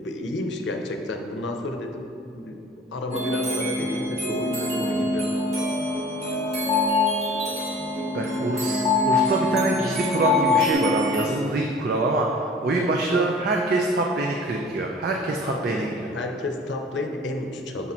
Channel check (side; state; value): both; normal; correlation 0.45